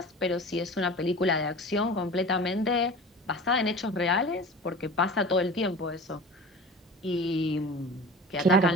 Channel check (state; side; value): normal; both; correlation 0.37